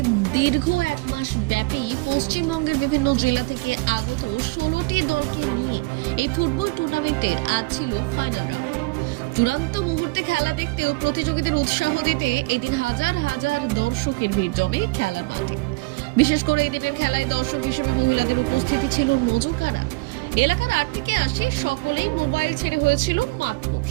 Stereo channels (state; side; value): quieter; left; 25.3 dB